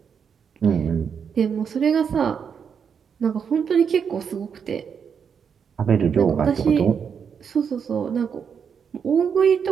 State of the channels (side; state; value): left; quieter; 7.0 dB